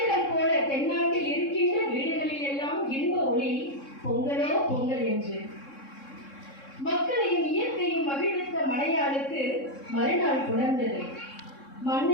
போல தென்னாட்டில் இருக்கின்ற வீடுகளில் எல்லாம் இன்ப ஒளி பொங்கலோ பொங்கல் என்று. மக்களையும் இயற்கையும் மகிழ்வித்த மலையாளுக்கு மறுநாள் புணர்ந்தது.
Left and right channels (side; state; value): right; late; 3.7 ms